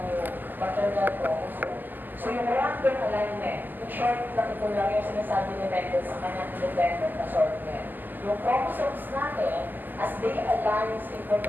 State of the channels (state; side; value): late; left; 0.087 ms